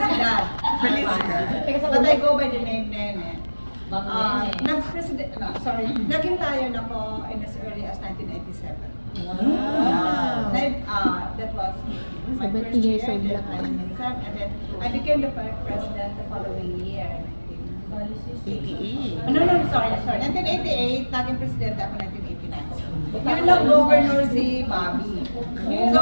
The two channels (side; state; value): both; inverted; correlation -1.00